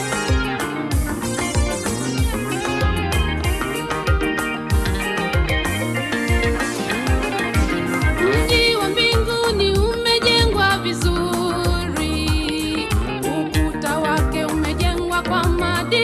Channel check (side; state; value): both; identical; correlation 1.00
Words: Mji wa mbinguni umejengwa vizuri, ukuta wake umejengwa kwa